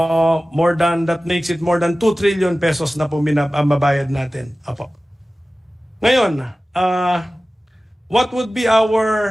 makes it more than 2 trillion pesos na po mabayad natin. Apo. Ngayon, what would be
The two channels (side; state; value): both; normal; correlation 0.96